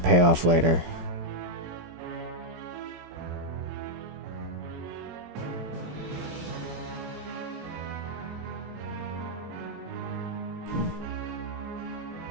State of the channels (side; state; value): left; late; 17 ms